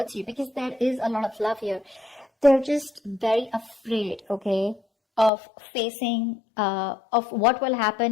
you, because there is a lot of love here. They're just very afraid, okay, of facing, of what will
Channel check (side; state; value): right; drops out; at 5.3 s